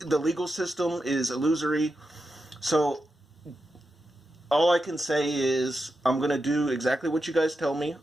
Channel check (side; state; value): both; normal; correlation 0.88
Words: legal system is illusory. So, all I can say is I'm going to do exactly what you guys tell me.